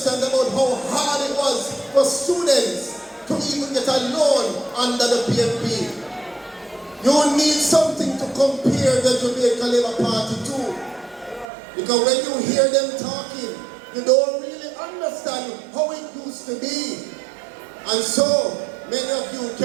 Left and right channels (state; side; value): drops out; left; at 11.5 s